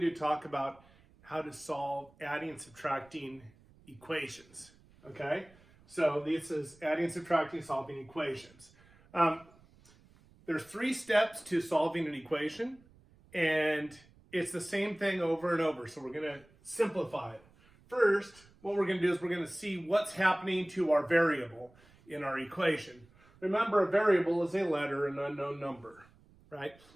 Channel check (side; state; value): right; noise; rumble, 28 dB below the sound